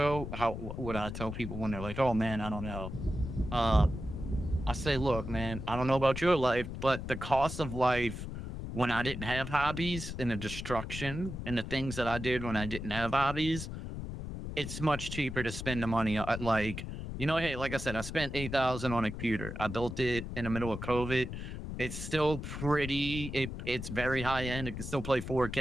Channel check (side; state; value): left; noise; rumble, 7 dB below the sound